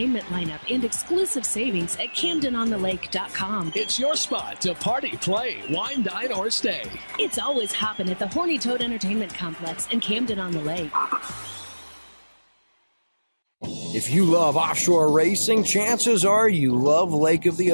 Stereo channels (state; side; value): inverted; both; correlation -1.00